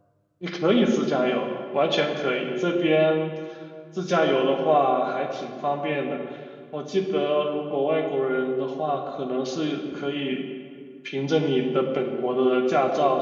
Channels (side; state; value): both; identical; correlation 1.00